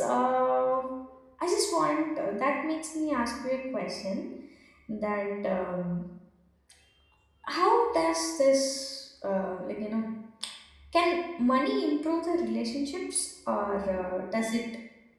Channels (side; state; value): both; identical; correlation 1.00